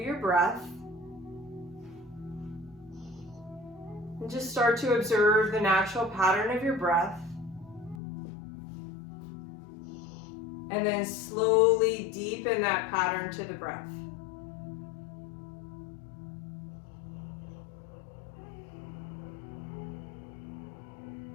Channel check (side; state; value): right; drops out; at 8.0 s